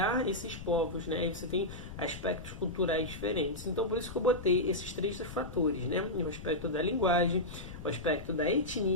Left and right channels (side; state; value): left; noise; rumble, 12 dB below the sound